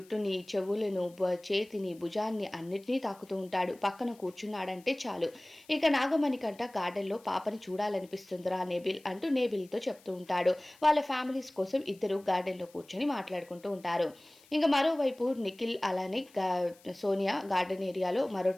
చెవులను, చేతిని, భుజాన్ని అన్నిటినీ తాకుతూ ఉంటాడు. పక్కన కూర్చున్నాడంటే చాలు. ఇక నాగమణికంట గార్డెన్‌లో పాపని చూడాలనిపిస్తుందిరా నేబిల్ అంటూ నేబిల్‌తో చెప్తూ ఉంటాడు. వాళ్ళ ఫ్యామిలీస్ కోసం ఇద్దరు గార్డెన్‌లో కూర్చొని మాట్లాడుకుంటూ ఉంటారు. ఇంక మరోవైపు నిఖిల్ అలానే సోనియా గార్డెన్ ఏరియాలో మరో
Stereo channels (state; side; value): noise; left; hiss, 27 dB below the sound